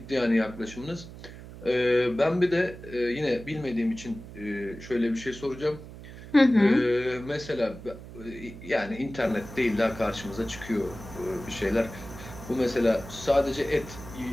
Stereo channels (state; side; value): noise; right; hum, 15 dB below the sound